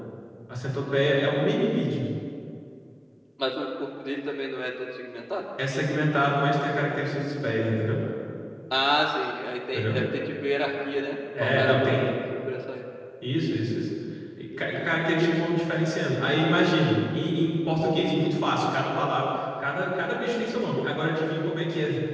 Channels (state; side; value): identical; both; correlation 1.00